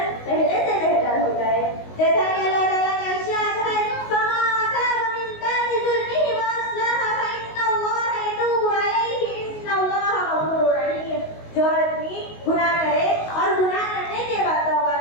पहले से बेहतर हो जाए। जैसा कि अल्लाह ताला का इरशाद है, फमन ताबा मिन बादि ज़ुल्मिही व अस्लह फइन्नल्लाह यतूबु अलैहि, इन्नल्लाह गफूरुर रहीम। जो आदमी गुनाह करे और गुनाह करने के बाद तौबा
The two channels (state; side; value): late; right; 19 ms